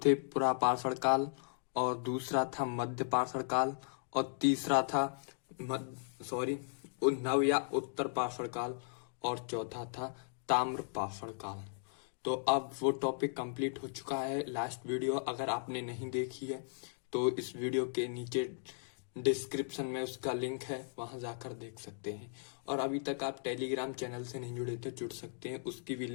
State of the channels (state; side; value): silent; right; digital silence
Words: पूरा पाषाण काल, और दूसरा था मध्य पाषाण काल, और तीसरा था नव या उत्तर पाषाण काल, और चौथा था ताम्र पाषाण काल। तो अब वो टॉपिक कंप्लीट हो चुका है। लास्ट वीडियो अगर आपने नहीं देखी है तो इस वीडियो के नीचे डिस्क्रिप्शन में उसका लिंक है, वहां जाकर देख सकते हैं। और अभी तक आप टेलीग्राम चैनल से नहीं जुड़े तो जुड़ सकते हैं, उसकी भी